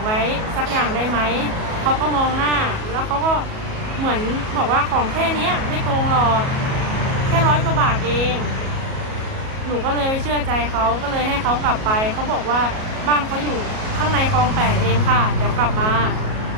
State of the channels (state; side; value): late; left; 37 ms